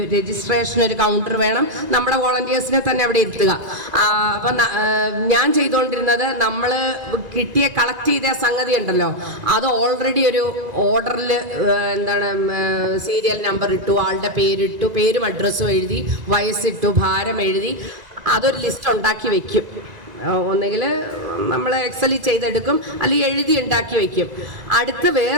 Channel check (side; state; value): left; late; 1.9 ms